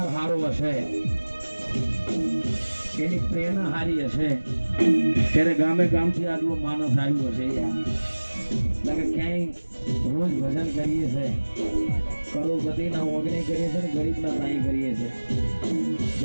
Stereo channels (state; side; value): inverted; both; correlation -1.00